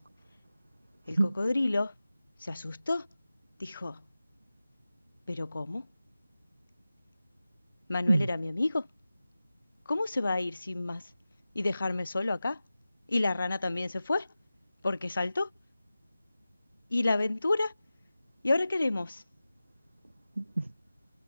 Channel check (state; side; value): inverted; both; correlation -0.95